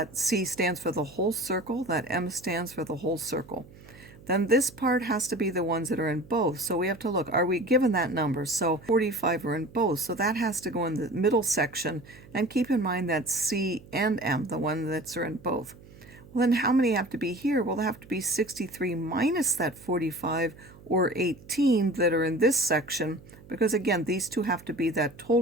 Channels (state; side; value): noise; right; hum, 21 dB below the sound